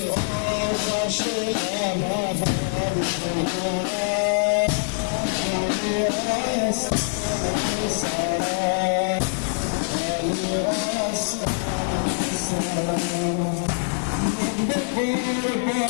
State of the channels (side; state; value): right; silent; digital silence